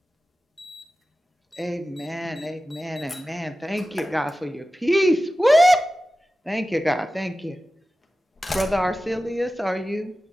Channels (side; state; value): both; normal; correlation 0.94